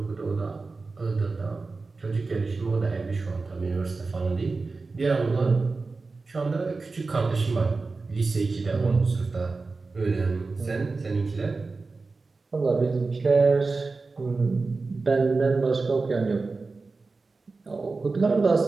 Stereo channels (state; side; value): quieter; left; 3.9 dB